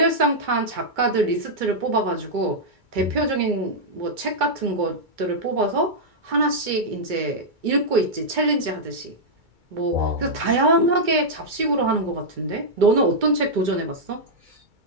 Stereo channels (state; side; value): late; left; 2.3 ms